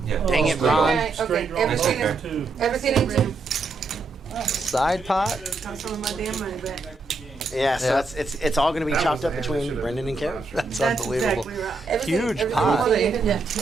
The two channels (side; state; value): left; quieter; 3.6 dB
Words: Yeah. dang it, Straight Ron. Okay, Straight draw. everything That's is, Two. everything in two. Side pot. Got some of my damn money back. Yeah, so Yeah. it's all going to be chopped up between Brendan and Karen. That's That's unbelievable. exactly right. Everything, Huge everything pot. is Well, they in. even have